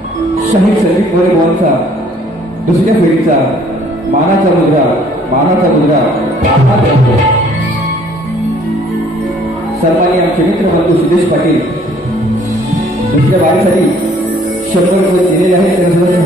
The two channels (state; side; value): normal; both; correlation 0.59